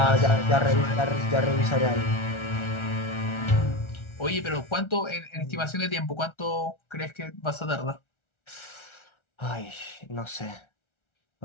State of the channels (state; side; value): late; right; 1.3 ms